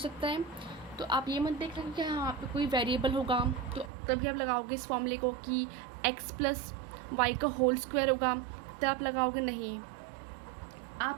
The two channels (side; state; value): left; drops out; at 3.9 s